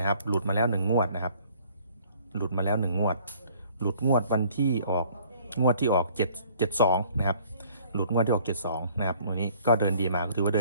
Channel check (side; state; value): both; inverted; correlation -0.56